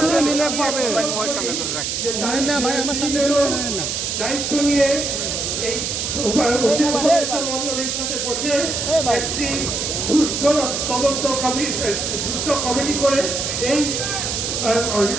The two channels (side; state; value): right; noise; hiss, 2 dB below the sound